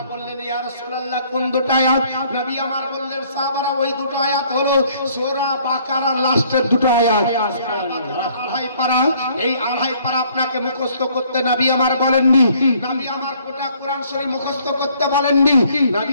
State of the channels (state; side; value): inverted; both; correlation -0.61